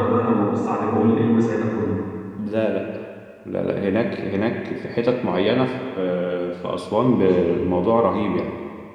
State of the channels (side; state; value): both; identical; correlation 1.00